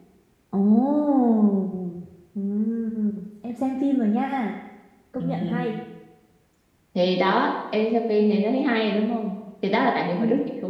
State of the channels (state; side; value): identical; both; correlation 1.00